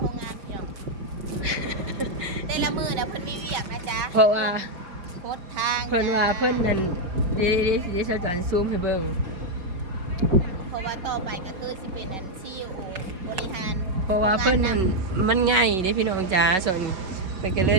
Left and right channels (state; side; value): late; left; 5.0 ms